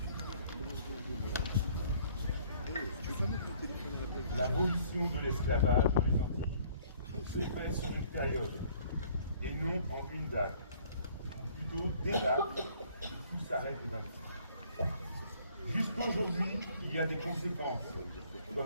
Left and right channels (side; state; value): both; inverted; correlation -0.58